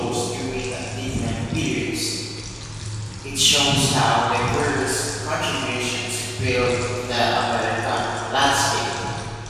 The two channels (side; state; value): both; identical; correlation 1.00